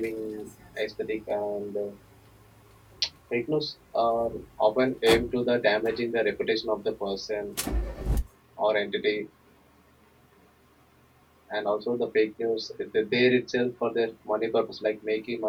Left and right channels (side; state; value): both; identical; correlation 1.00